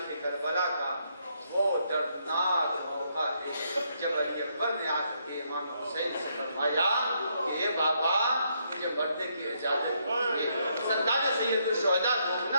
کربلا کا وہ دردناک موقع ہے جب علی اکبر نے آ کے امام حسین سے فرمایا کہ اے بابا مجھے مرنے کی اجازت دیجیے۔ سرکار سید الشہداء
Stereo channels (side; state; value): both; inverted; correlation -0.75